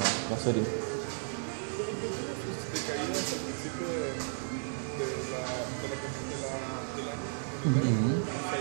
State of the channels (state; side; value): silent; left; digital silence